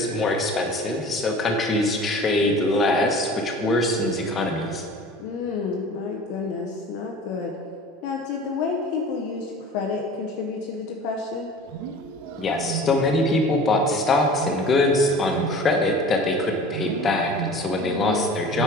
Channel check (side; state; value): both; normal; correlation 0.41